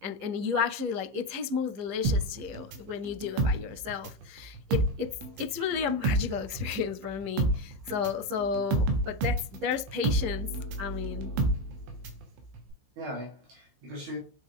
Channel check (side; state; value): left; late; 15 ms